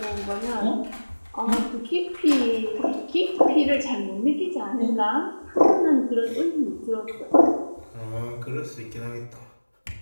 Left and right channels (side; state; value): both; inverted; correlation -1.00